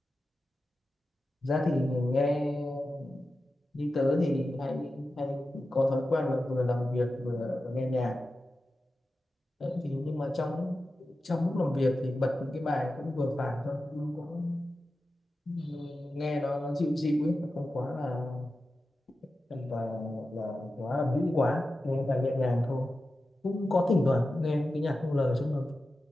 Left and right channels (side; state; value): both; normal; correlation 0.92